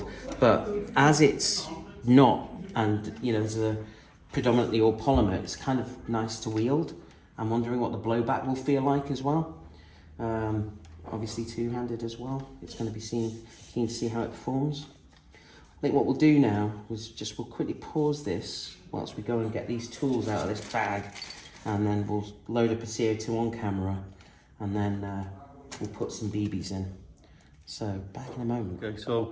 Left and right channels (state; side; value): identical; both; correlation 1.00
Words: But as it's not, and, you know, there's a predominantly all polymer, it's kind of nice to wield. I'm wondering what the blowback will feel like as well. Obviously two-handed as well. It's going to be keen to see how it performs. I think what we'll do now is just we'll quickly pause this whilst we go and get these tools out of this bag, and then we'll load up a CO2 on camera, and then we'll put some BBs in. So back in a moment. Okay,